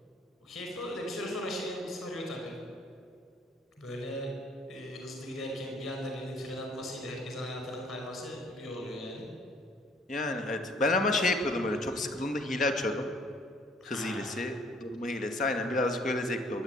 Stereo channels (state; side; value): normal; both; correlation 0.59